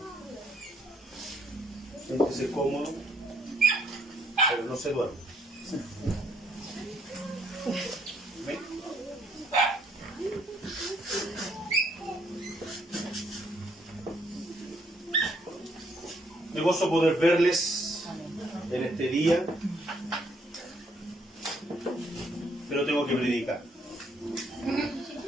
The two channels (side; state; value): both; normal; correlation 0.69